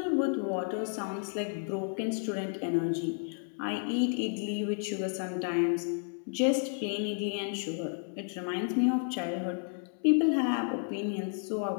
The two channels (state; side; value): silent; right; 57 dB below the other